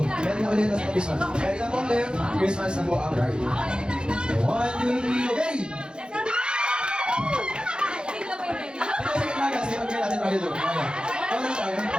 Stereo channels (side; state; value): left; late; 0.050 ms